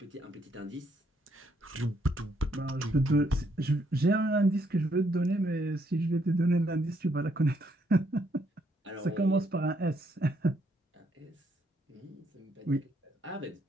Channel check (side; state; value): both; normal; correlation 0.73